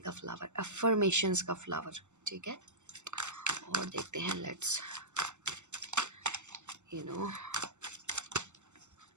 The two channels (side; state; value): left; late; 0.84 ms